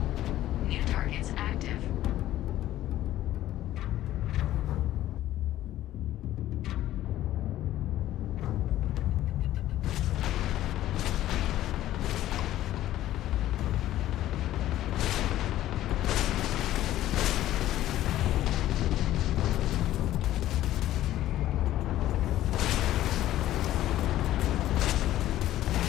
New targets active.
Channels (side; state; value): right; quieter; 13.8 dB